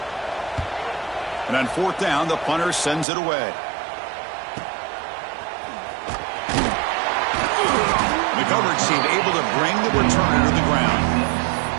And on fourth down, the punter sends it away. The coverage team able to bring the returner to the ground.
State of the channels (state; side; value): drops out; left; at 3.1 s